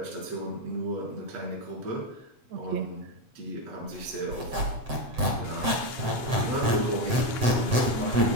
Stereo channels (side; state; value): left; late; 7.8 ms